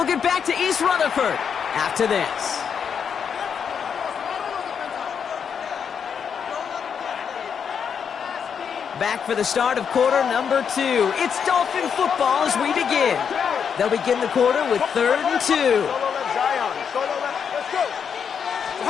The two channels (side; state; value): right; quieter; 7.1 dB